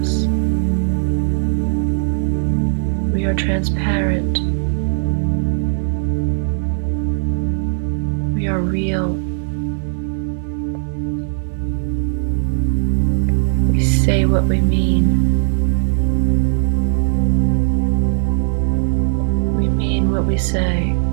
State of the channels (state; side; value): silent; left; 67 dB below the other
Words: We are transparent. We are real. We say what we mean. We mean what we say.